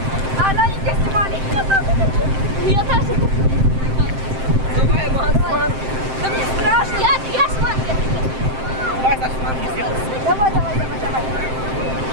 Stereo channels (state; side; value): late; left; 7.7 ms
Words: А она не снимали. Я тоже. Давай, Макс. Да мне страшно. Я с манки. Давай, Саша, манки сделай. Давай.